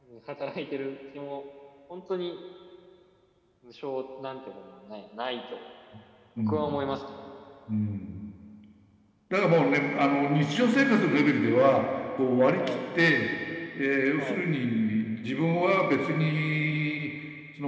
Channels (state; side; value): identical; both; correlation 1.00